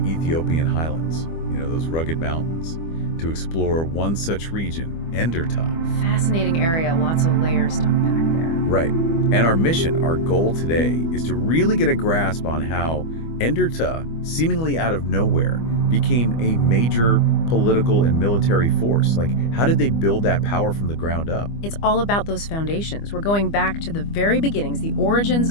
Ethiopian highlands, those rugged mountains, to explore one such region, Enderta. Fascinating area, lots of layers to unpack there. Right. And our mission, our goal today, is to really get a grasp on how Enderta, seemingly out of nowhere, became a major political and military force. Like, how did they build that power from the ground up? It's all about those foundations. We're going back to the very beginnings, the origins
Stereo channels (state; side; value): late; right; 25 ms